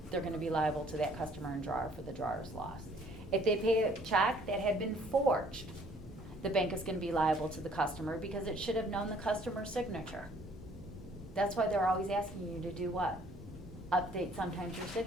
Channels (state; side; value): normal; both; correlation 0.59